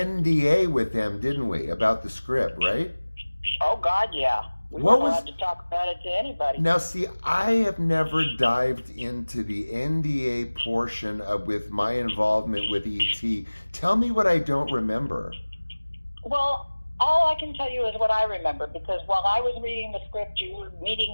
with them, didn't we, about the script, right? Oh, God, yeah. We What weren't was- allowed to talk about it to anybody. Now, see, I have never dived into the NDA portion with my involvement with E.T. Tell me what I don't remember. Well, all I can tell you is what I remember, because while I was reading the script, you were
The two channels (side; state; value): both; inverted; correlation -1.00